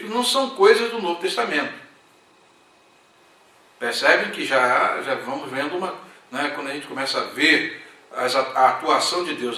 não são coisas do Novo Testamento. Percebem que já vamos vendo quando a gente começa a ver a atuação de Deus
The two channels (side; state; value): both; identical; correlation 1.00